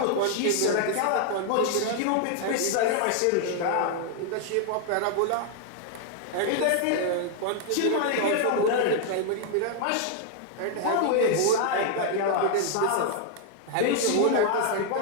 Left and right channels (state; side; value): different; both; correlation 0.00